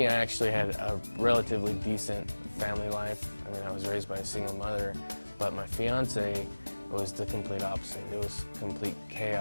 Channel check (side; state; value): both; inverted; correlation -1.00